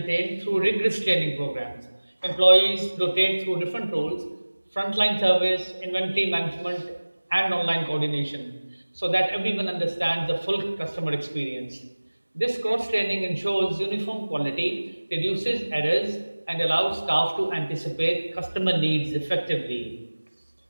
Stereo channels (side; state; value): both; inverted; correlation -1.00